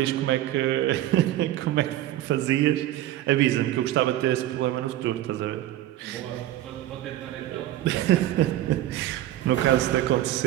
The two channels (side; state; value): left; quieter; 14.0 dB